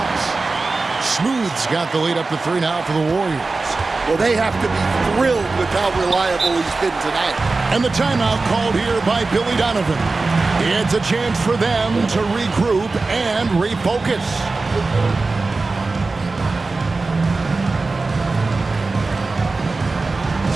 Smooth's got the lead up to 3 now for the Warriors. Well, they have to be thrilled with how reliable he's been tonight. And the timeout called here by Billy Donovan. It's a chance for them to regroup and refocus.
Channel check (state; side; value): quieter; left; 3.7 dB